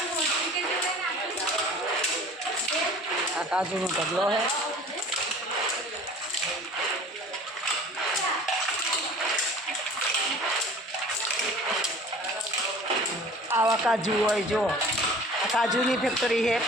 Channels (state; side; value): normal; both; correlation 0.45